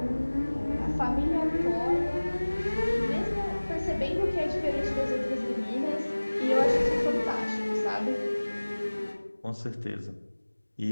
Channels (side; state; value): both; inverted; correlation -1.00